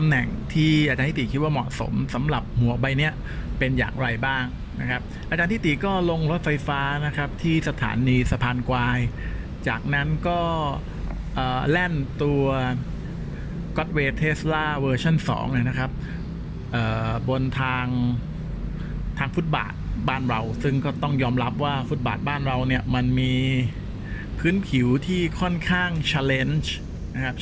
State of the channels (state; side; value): identical; both; correlation 1.00